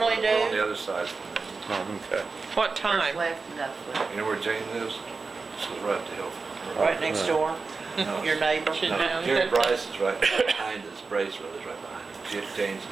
We're on the do. other side from them. Oh, okay. What First time? left and that's left. You know where Jane lives? This is right up the hill. Right next door, No, your neighbor. She's no, down Jerry there. Bryce is right behind us. Brace Brothers right behind us. Jane's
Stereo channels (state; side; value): quieter; left; 4.3 dB